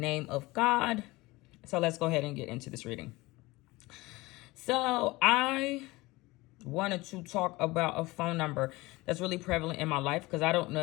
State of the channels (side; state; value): right; quieter; 21.3 dB